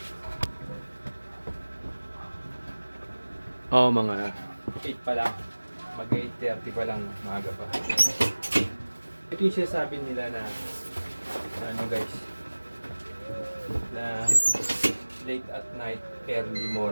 Oo, mga 8 pa lang. Mag 8:30 pa lang, maaga pa. Ito yung sinasabi nila na ano guys, na late at night, early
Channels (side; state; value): both; inverted; correlation -1.00